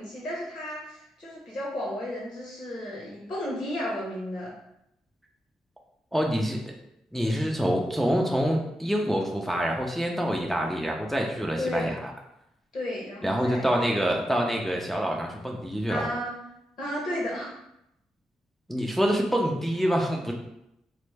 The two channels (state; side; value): normal; both; correlation 0.88